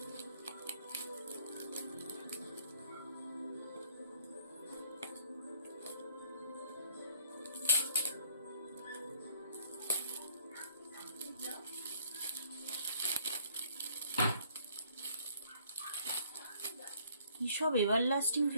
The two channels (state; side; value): inverted; both; correlation -0.61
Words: কিসব এভার লাস্টিং